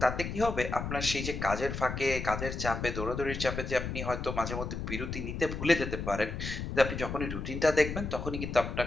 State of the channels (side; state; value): left; noise; rumble, 5 dB below the sound